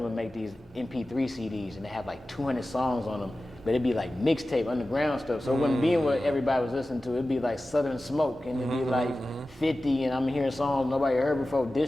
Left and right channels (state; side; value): normal; both; correlation 0.95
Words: would make these MP3 CDs and they have like 200 songs on them, but it'd be like mixtape, underground stuff. So it wouldn't be what everybody was listening to. It'd be like Southern Smoke and it'd be like 50, and I'm hearing songs nobody heard before,